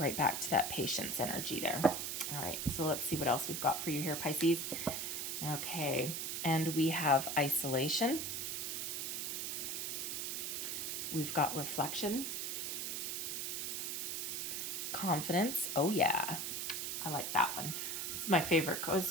back to that patience energy there. All right, so let's see what else we've got for you here, Pisces. Okay, and we have isolation. We've got reflection. Confidence. Oh yeah, I like that one. It's my favorite.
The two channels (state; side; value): noise; right; hiss, 2 dB below the sound